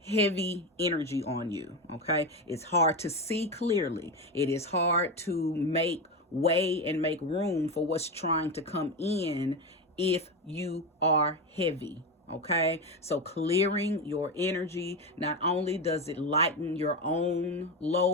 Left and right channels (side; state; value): both; normal; correlation 0.16